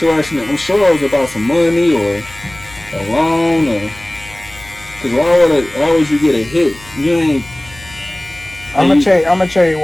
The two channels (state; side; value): noise; left; hum, 21 dB below the sound